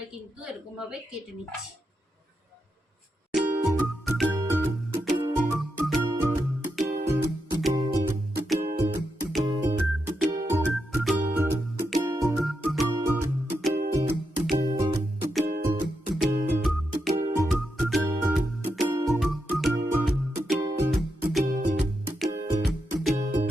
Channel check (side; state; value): both; normal; correlation 0.85